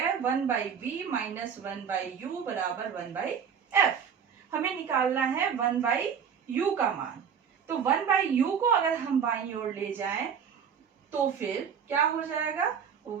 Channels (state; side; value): quieter; left; 7.3 dB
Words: 1/b - 1/u बराबर 1/f। हमें निकालना है 1/u का मान, तो 1/u को अगर हम बाईं ओर ले जाएं तो फिर क्या हो जाएगा,